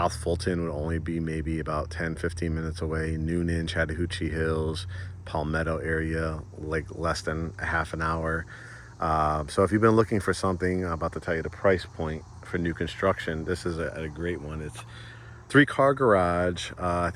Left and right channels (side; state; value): both; identical; correlation 1.00